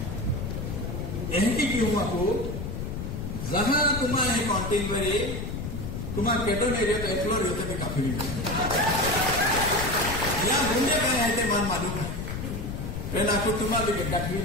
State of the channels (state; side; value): noise; left; rumble, 5 dB below the sound